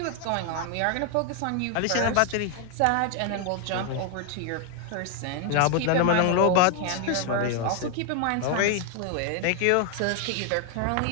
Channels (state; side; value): different; both; correlation 0.00